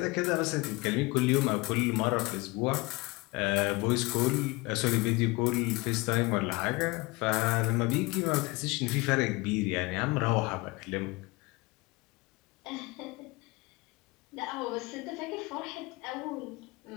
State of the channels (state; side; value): quieter; right; 23.9 dB